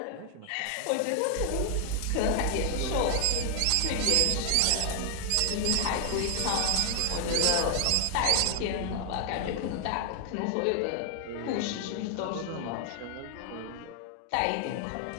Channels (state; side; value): different; both; correlation 0.00